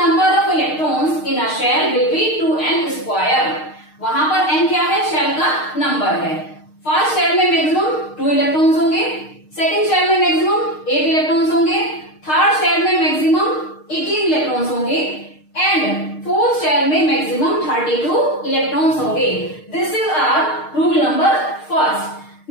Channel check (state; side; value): late; right; 6.5 ms